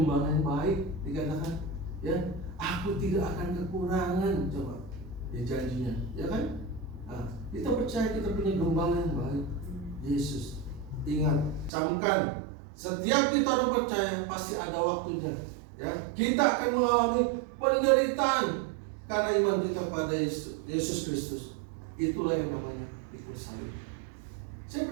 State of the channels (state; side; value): drops out; left; at 11.7 s